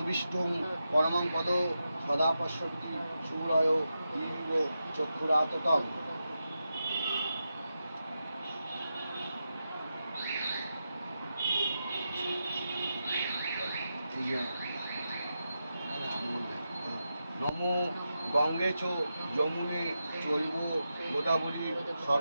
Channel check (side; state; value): both; inverted; correlation -0.89